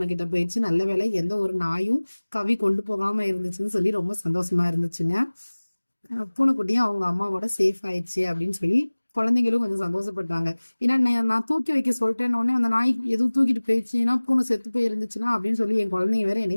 கிட்ட போயிடுச்சு, நல்ல வேலை எந்த ஒரு நாயும் கவி கொண்டு போகாம இருந்துச்சுன்னு சொல்லி ரொம்ப சந்தோஷமா இருந்துச்சுங்க. பூனைக்குட்டியும் அவங்க அம்மாவோட சேஃப் ஆயிடுச்சு அப்படின்னு சொல்லி குழந்தைங்களும் கொஞ்சம் சந்தோஷப்பட்டாங்க. ஏன்னா நான் தூக்கி வைக்க சொல்லிட்டேன்னு அந்த நாய் எதுவும் தூக்கிட்டு போயிடுச்சுன்னா பூனை செத்து போய் இருந்துச்சுன்னா அப்படின்னு சொல்லி என் குழந்தைங்க வேற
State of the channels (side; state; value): both; inverted; correlation -1.00